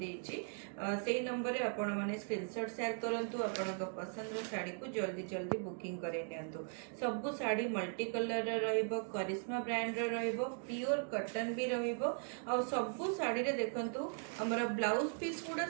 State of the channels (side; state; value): left; silent; 52 dB below the other